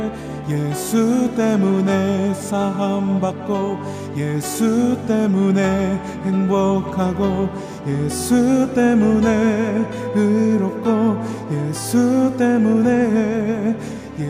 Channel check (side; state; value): both; identical; correlation 1.00